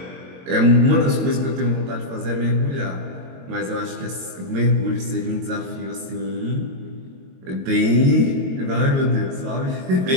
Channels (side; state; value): left; late; 22 ms